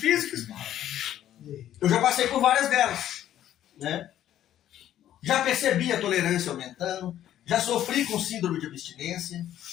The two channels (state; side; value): quieter; right; 11.8 dB